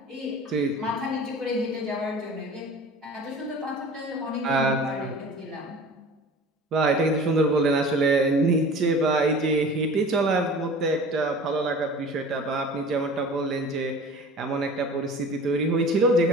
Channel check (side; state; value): both; normal; correlation 0.41